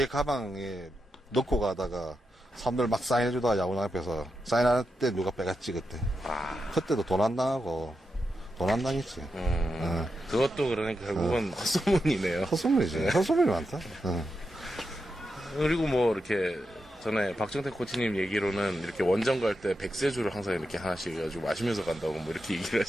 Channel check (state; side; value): normal; both; correlation 0.87